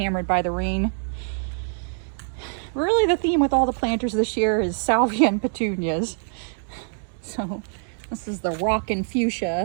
by the rain. Really, the theme with all the planters this year is salvia and petunias. So this is the Rockin'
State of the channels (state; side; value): silent; left; 62 dB below the other